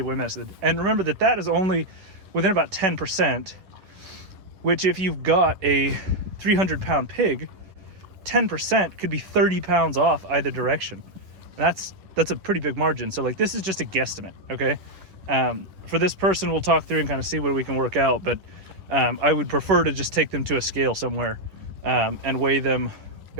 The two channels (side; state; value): left; late; 11 ms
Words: weight method. And remember that is only within about 10%, which if you've got a 300-pound pig, 10% could be 30 pounds off either direction. And that's a pretty big margin. So like, this is just a guesstimate, okay? For this person, we'll talk through and kind of see what we can work out, but I would prefer to just take them to a scale somewhere and weigh them